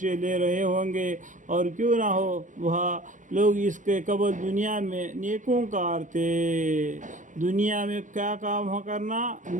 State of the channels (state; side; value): late; left; 0.37 ms